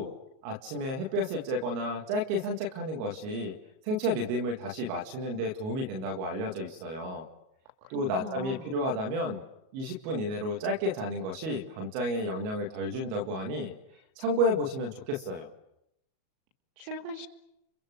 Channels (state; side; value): late; left; 38 ms